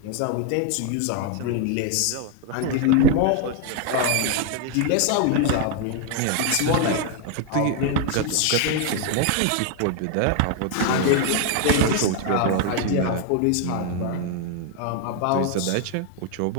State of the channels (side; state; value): both; different; correlation 0.01